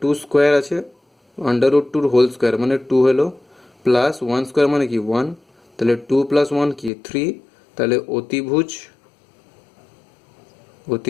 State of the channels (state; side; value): drops out; right; at 6.9 s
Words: 2 স্কোয়ার আছে, √2 হোল স্কোয়ার মানে 2 হলো, প্লাস 1 স্কোয়ার মানে কি 1, তাহলে 2 + 1 কি 3, তাহলে অতিভুজ